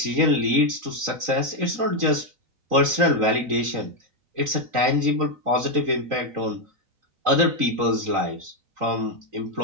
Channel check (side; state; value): left; late; 3.9 ms